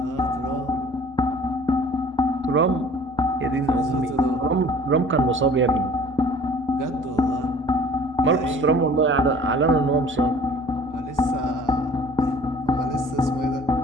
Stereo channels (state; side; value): normal; both; correlation 0.50